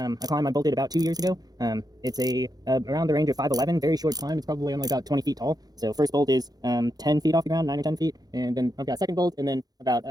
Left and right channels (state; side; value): late; left; 0.19 ms